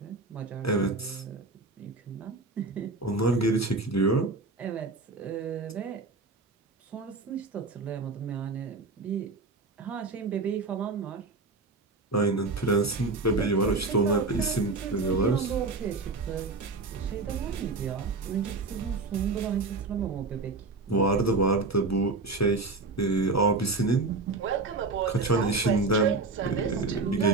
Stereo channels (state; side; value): quieter; left; 3.5 dB